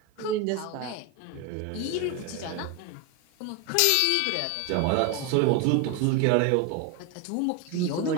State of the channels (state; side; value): different; both; correlation 0.02